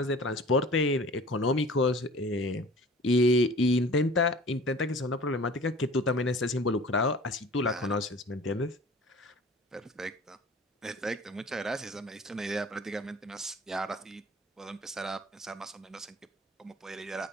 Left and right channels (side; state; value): both; normal; correlation 0.44